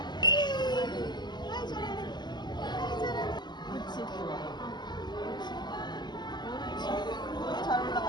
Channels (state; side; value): late; right; 0.21 ms